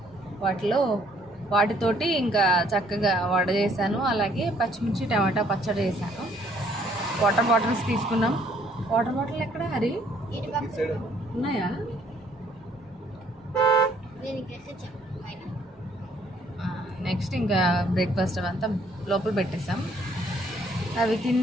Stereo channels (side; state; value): both; normal; correlation 0.63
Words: వాటితోటి ఇంకా చక్కగా వడ చేశాను. అలాగే పచ్చిమిర్చి టమాటా పచ్చడి చేశాను. వాటర్ బాటిల్స్ తీసుకున్నాం. వాటర్ బాటిల్ ఎక్కడ హరి ఉన్నాయా? నెక్స్ట్ ఇంకా బ్రేక్ఫాస్ట్ అవంతా లోపల పెట్టేసాం. అవి